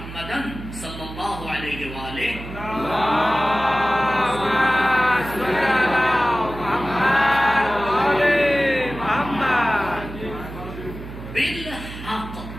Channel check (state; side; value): noise; right; hum, 11 dB below the sound